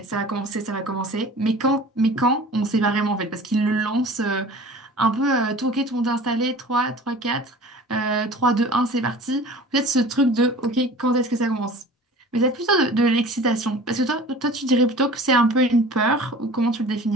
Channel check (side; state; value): both; normal; correlation 0.42